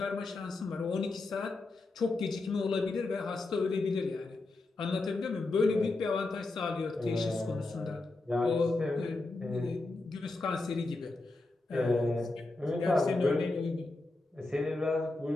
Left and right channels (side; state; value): right; quieter; 3.2 dB